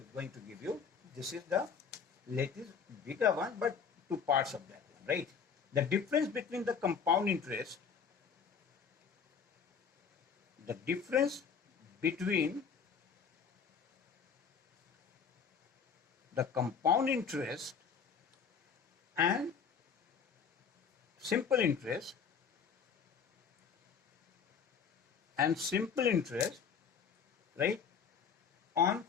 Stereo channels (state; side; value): quieter; right; 6.5 dB